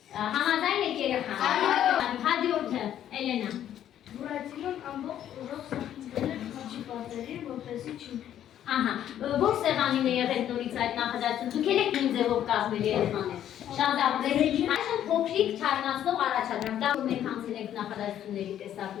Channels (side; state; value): right; quieter; 10.9 dB